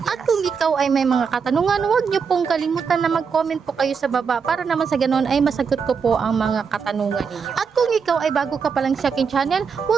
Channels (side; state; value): left; quieter; 6.0 dB